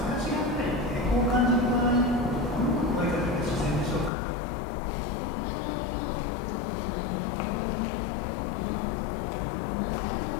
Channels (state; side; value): drops out; right; at 4.1 s